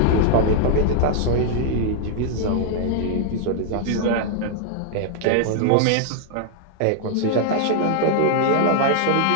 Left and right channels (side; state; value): both; different; correlation 0.00